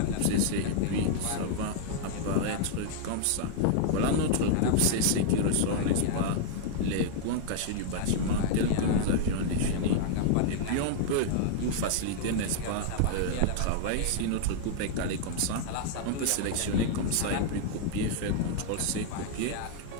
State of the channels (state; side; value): different; both; correlation -0.01